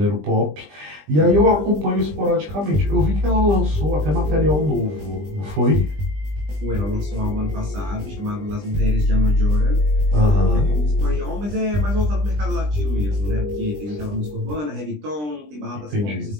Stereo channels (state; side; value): late; left; 20 ms